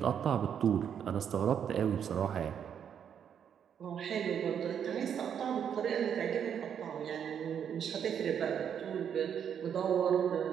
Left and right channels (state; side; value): quieter; left; 8.3 dB